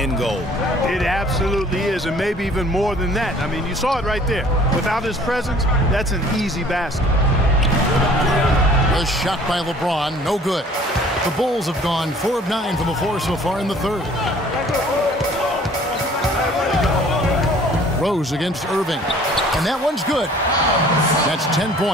gold. It absolutely is, and maybe even more than that. I mean, you saw it right there. Without his presence, that's an easy basket. A shot by LeBron, no good. The Bulls have gone 4 of 9 from the floor so far in the third. Rose against Irving, and that one's good. That's 10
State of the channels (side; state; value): both; normal; correlation 0.53